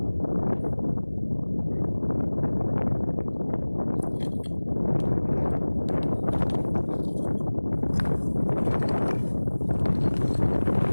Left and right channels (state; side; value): inverted; both; correlation -1.00